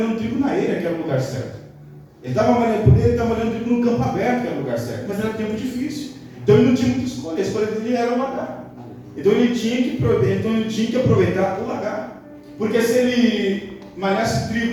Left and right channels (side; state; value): both; identical; correlation 1.00